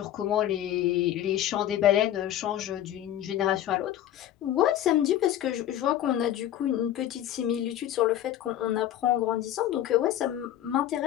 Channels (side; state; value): right; quieter; 12.0 dB